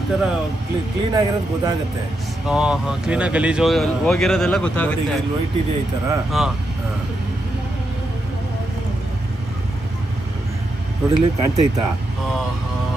ಈ ತರ ಕ್ಲೀನ್ ಆಗಿರೋದು ಗೊತ್ತಾಗುತ್ತೆ. ಕ್ಲೀನ್ ಆಗಿ ಗಲೀಜ್ ಹೋಗಿರೋದೆಲ್ಲ ಗೊತ್ತಾಗುತ್ತೆ. ವೈಟ್ ಇದೆ ಈ ತರ ನೋಡಿಲಿ ಕಾಣ್ತೈತಾ?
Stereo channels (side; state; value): both; normal; correlation 0.84